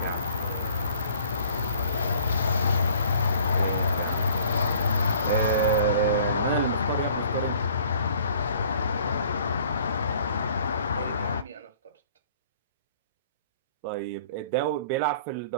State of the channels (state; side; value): inverted; both; correlation -0.54